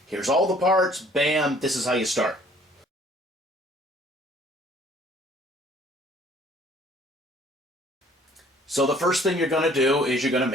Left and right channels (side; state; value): both; normal; correlation 0.56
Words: Here's all the parts, bam, this is how you start. So the first thing you're going to do is you're going to